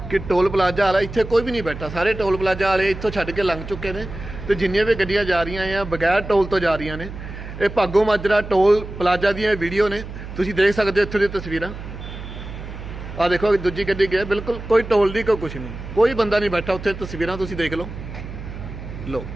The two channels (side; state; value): right; noise; hum, 11 dB below the sound